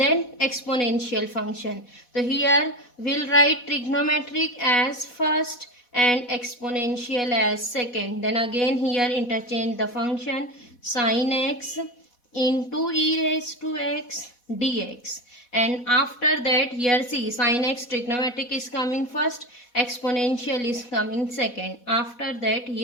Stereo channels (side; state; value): right; late; 4.1 ms